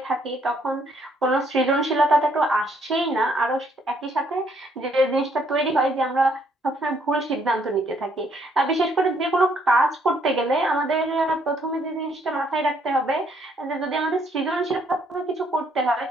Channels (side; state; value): both; normal; correlation 0.68